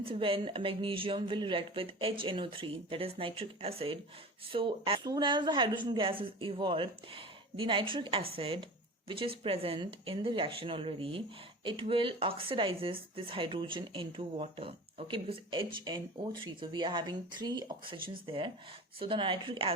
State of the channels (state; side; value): normal; both; correlation 0.35